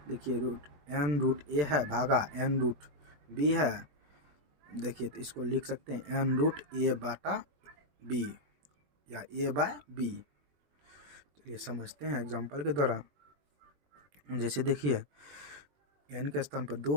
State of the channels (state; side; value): late; left; 20 ms